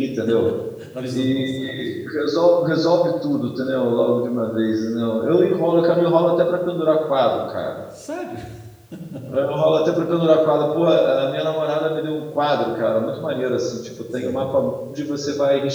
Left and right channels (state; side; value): identical; both; correlation 1.00